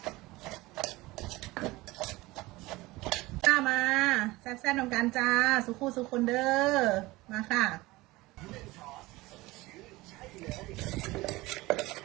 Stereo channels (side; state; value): left; quieter; 20.3 dB